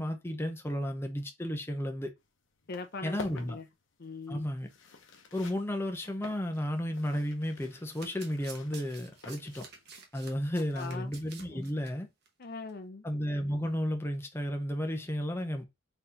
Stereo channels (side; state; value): both; normal; correlation 0.87